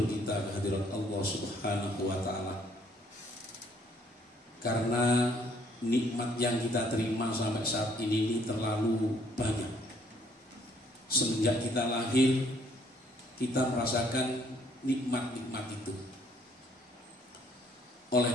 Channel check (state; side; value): normal; both; correlation 0.64